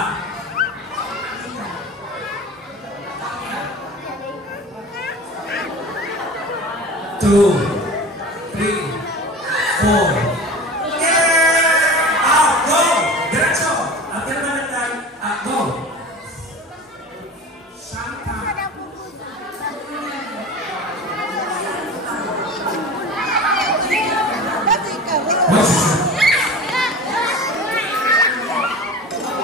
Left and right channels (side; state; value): both; normal; correlation 0.35